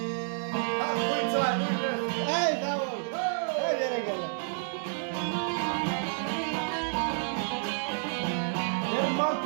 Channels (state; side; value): silent; left; digital silence